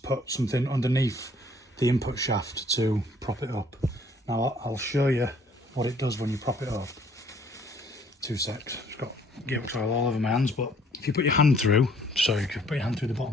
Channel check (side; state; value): both; normal; correlation 0.60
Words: put something underneath the input shaft to prop it up. Now I'll show you what it does when you prop it up. 2 secs. I've got gearbox oil all over my hands, but if you put your hand through, so you can put your hand through the